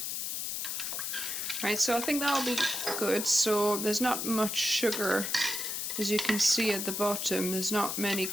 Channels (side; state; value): left; noise; hiss, 2 dB below the sound